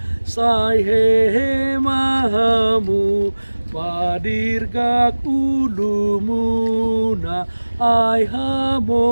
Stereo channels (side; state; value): both; inverted; correlation -1.00